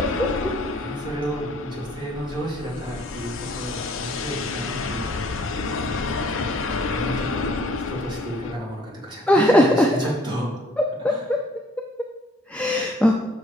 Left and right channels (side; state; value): both; normal; correlation 0.60